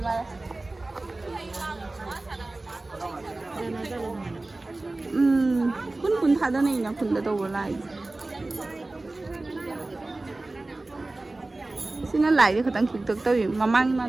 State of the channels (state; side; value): quieter; left; 3.0 dB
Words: ma kun thada nei na kun da do lai sina lai de khatang khik tok tawi mamang ma